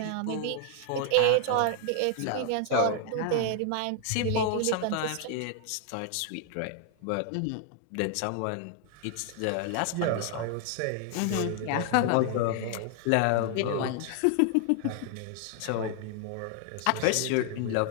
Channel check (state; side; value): different; both; correlation 0.00